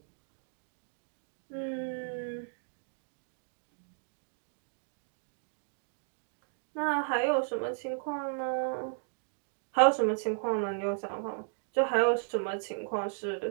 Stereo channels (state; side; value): silent; left; digital silence